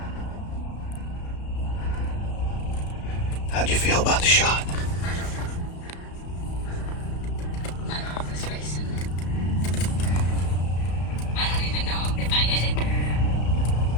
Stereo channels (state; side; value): late; right; 34 ms